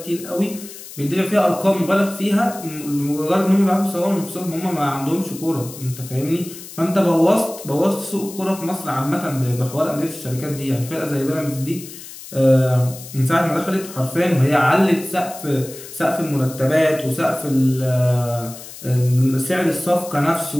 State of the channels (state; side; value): noise; left; hiss, 15 dB below the sound